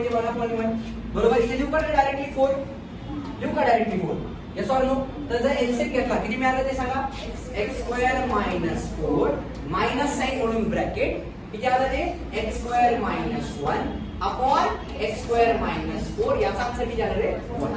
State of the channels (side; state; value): both; identical; correlation 1.00